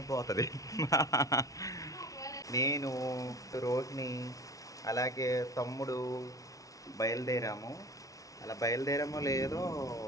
పోతుంది. నేను రోహిణి అలాగే తమ్ముడు బయలుదేరాము. అలా బయలుదేరామో లేదో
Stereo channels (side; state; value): right; late; 0.17 ms